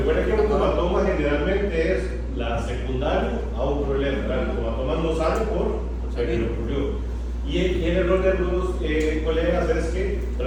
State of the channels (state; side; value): identical; both; correlation 1.00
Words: que el automatoma generalmente es la secundaria a un problema. ¿Verdad? El automatoma no sale por el que le ocurrió. Y el error de algunos colegas es que